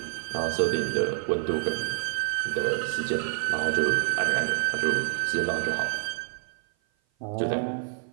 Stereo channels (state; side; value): silent; left; 56 dB below the other